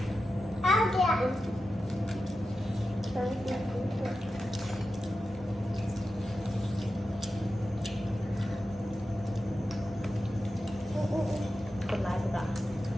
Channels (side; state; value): both; normal; correlation 0.91